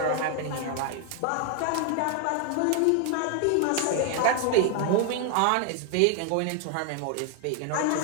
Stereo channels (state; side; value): different; both; correlation 0.00